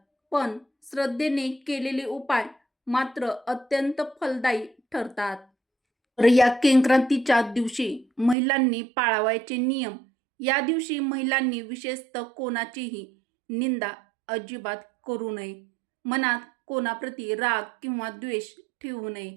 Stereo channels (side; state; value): left; drops out; at 8.3 s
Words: पण श्रद्धेने केलेले उपाय मात्र अत्यंत फलदायी ठरतात. तर या संक्रांतीच्या दिवशी महिलांनी पाळावयाचे नियम. या दिवशी महिलांनी विशेषतः कोणाचीही निंदा अजिबात करू नये. मनात कोणाप्रती राग किंवा द्वेष ठेवू